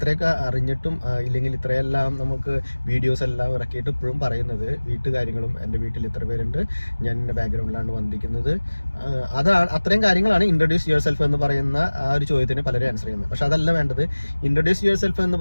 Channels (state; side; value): inverted; both; correlation -1.00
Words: അറിഞ്ഞിട്ടും ഇല്ലെങ്കിൽ ഇത്രയെല്ലാം നമുക്ക് വീഡിയോസ് എല്ലാം ഇറക്കിയിട്ട് ഇപ്പോഴും പറയുന്നത് വീട്ടുകാര്യങ്ങളും എൻ്റെ വീട്ടിൽ ഇത്ര പേരുണ്ട്, ഞാൻ എൻ്റെ ബാക്ക്ഗ്രൗണ്ടിലാണ് വന്നിരിക്കുന്നത്, അതാണ് അത്രയും കാര്യങ്ങളാണ് ഇൻട്രൊഡ്യൂസ് യുവർ സെൽഫ് എന്ന് പറയുന്ന ആ ഒരു ചോദ്യത്തിന് പലരും ആൻസർ ചെയ്യുന്നത്. പക്ഷെ അതല്ല വേണ്ടത്. ഇൻട്രൊഡ്യൂസ് യുവർ സെൽഫ് എന്ന്